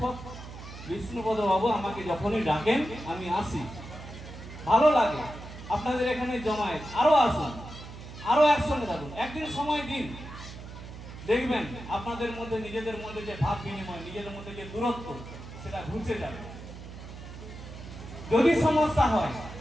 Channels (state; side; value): noise; right; hum, 13 dB below the sound